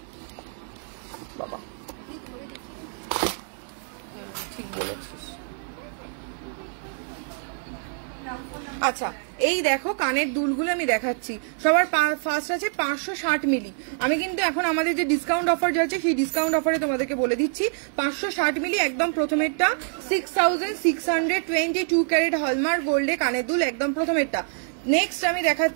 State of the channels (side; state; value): left; silent; 61 dB below the other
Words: বাবা ঠিক বলেছিস। আচ্ছা এই দেখো কানের দুলগুলো আমি দেখাচ্ছি। সবার ফার্স্ট আছে 560 মিলি। আমি কিন্তু এখন আমাদের যে ডিসকাউন্ট অফার যাচ্ছে সেই ডিসকাউন্ট অফারে তোমাদেরকে বলে দিচ্ছি 560 মিলি একদম প্রথমেরটা 6622 ক্যারেট হলমার্ক গোল্ডে কানের দুল, একদম প্রথমেরটা। নেক্সট আমি